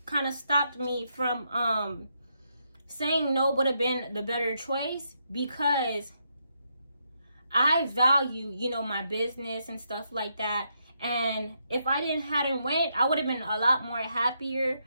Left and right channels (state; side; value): inverted; both; correlation -0.79